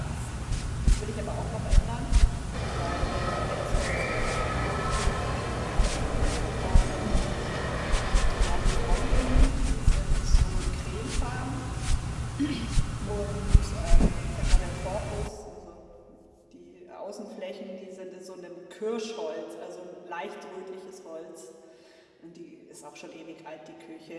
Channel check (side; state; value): both; identical; correlation 1.00